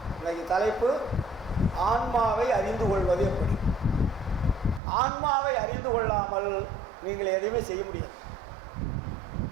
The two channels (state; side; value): drops out; left; at 4.8 s